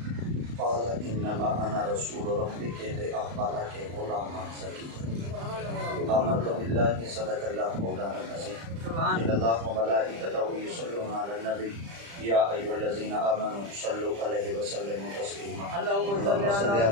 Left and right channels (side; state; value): left; late; 35 ms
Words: قال انما انا رسول ربک لاخبرک غلاما زکیا آمنت باللہ صدق اللہ مولانا العظیم ان اللہ وملائکتہ یصلون علی النبی یا ایھا الذین آمنوا صلوا علیہ وسلموا تسلیما اللهم صل